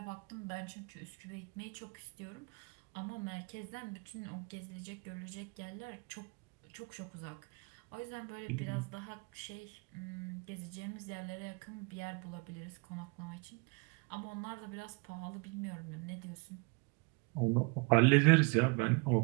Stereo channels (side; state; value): left; quieter; 30.9 dB